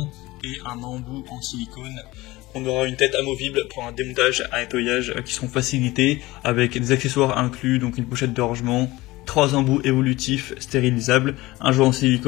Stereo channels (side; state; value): right; quieter; 19.6 dB